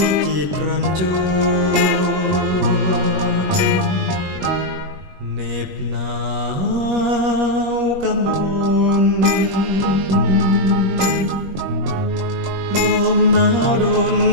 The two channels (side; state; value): left; late; 21 ms